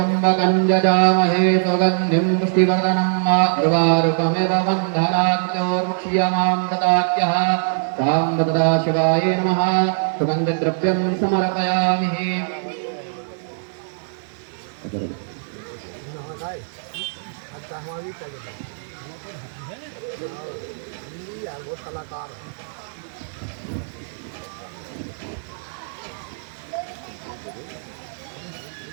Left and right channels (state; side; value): silent; left; digital silence